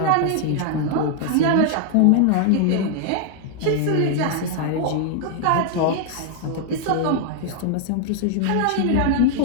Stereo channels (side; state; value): both; different; correlation 0.00